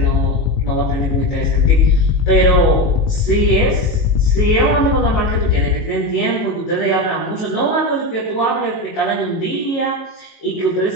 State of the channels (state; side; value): late; right; 18 ms